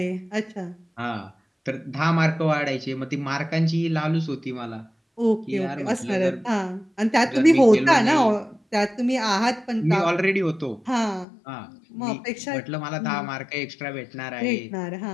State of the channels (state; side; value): drops out; right; at 11.2 s